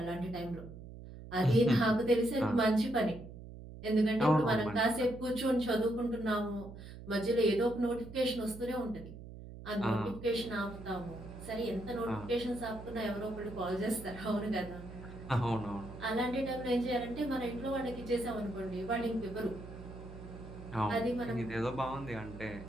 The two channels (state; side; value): noise; right; hum, 13 dB below the sound